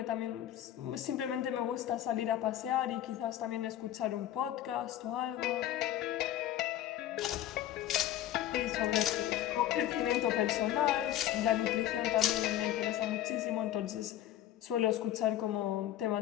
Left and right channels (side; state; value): right; quieter; 12.5 dB